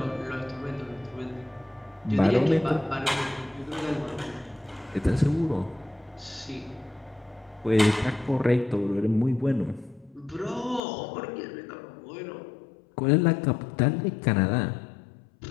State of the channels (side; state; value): right; drops out; at 10.8 s